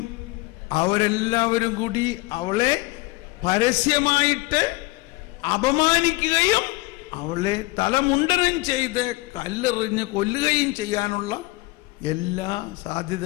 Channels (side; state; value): right; quieter; 22.4 dB